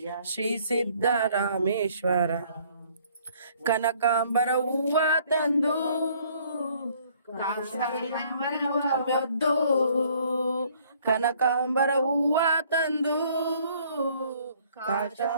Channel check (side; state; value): both; inverted; correlation -0.61